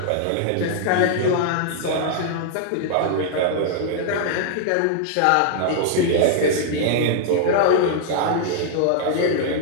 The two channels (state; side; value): different; both; correlation -0.01